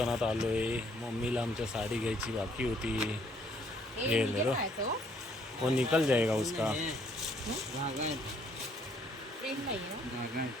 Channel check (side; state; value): both; normal; correlation 0.65